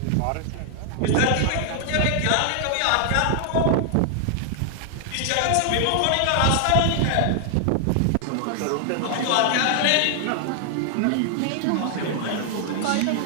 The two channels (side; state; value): both; different; correlation 0.00